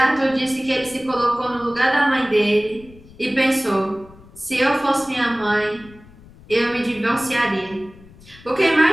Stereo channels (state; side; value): noise; left; rumble, 23 dB below the sound